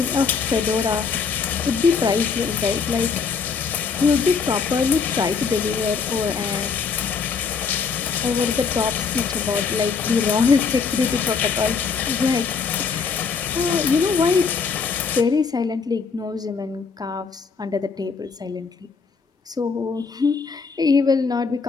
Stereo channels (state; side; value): quieter; right; 5.5 dB